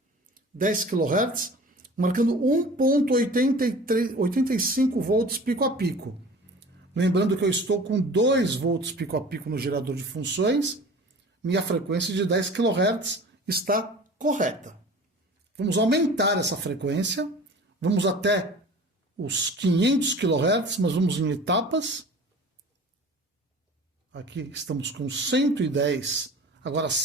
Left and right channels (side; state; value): both; normal; correlation 0.42